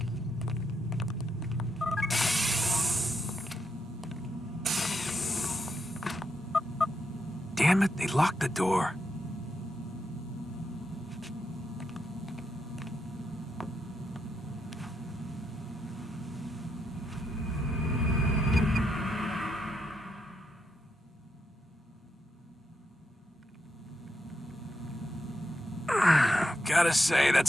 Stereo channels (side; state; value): both; normal; correlation 0.82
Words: Damn it, they locked the door. Gotta say,